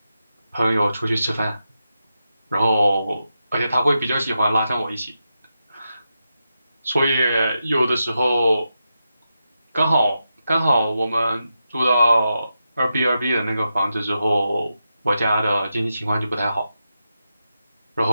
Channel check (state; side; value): inverted; both; correlation -0.88